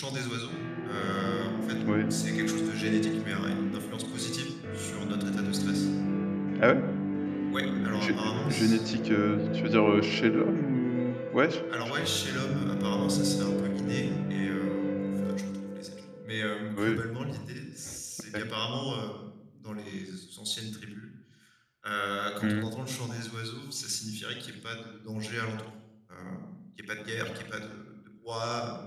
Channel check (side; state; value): both; identical; correlation 1.00